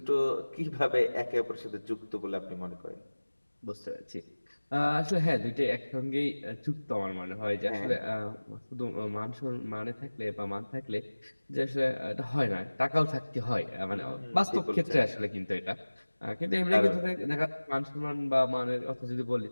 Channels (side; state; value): both; inverted; correlation -1.00